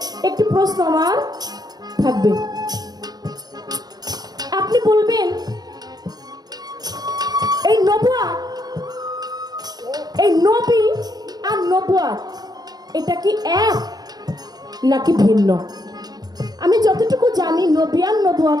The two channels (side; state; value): left; late; 0.19 ms